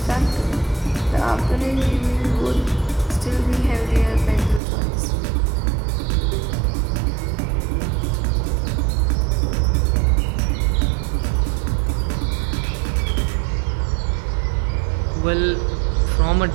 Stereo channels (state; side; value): drops out; left; at 4.6 s